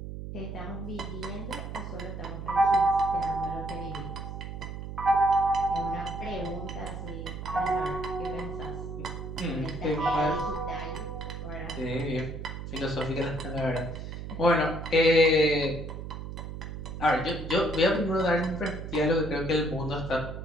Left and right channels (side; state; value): right; noise; hum, 8 dB below the sound